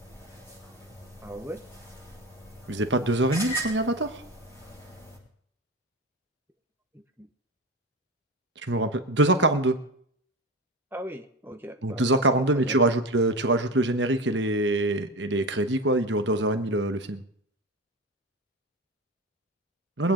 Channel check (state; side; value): normal; both; correlation 0.24